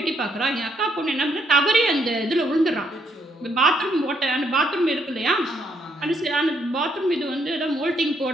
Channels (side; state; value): both; normal; correlation 0.73